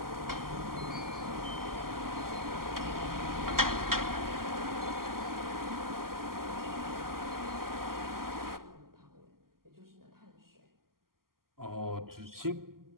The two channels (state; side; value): late; left; 0.92 ms